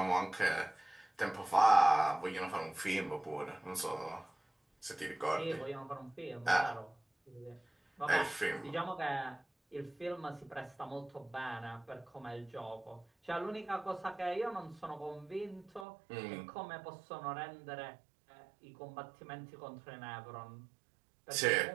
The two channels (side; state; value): left; drops out; at 15.9 s